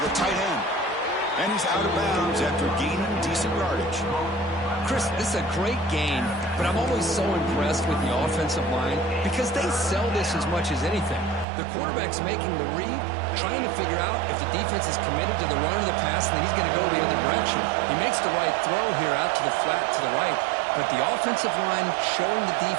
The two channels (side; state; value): left; drops out; at 11.5 s